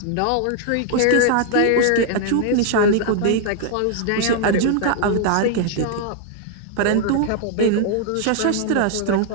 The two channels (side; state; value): both; different; correlation 0.00